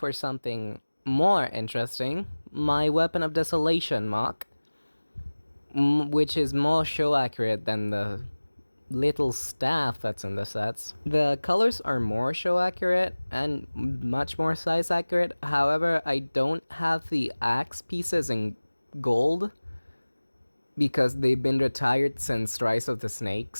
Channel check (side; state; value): both; inverted; correlation -1.00